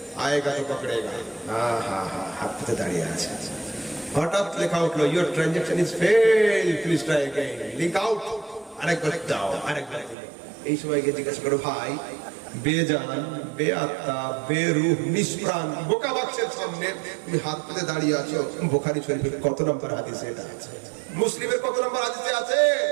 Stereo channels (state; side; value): drops out; left; at 10.2 s